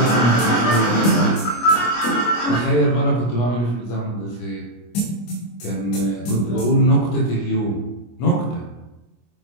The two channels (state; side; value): late; right; 25 ms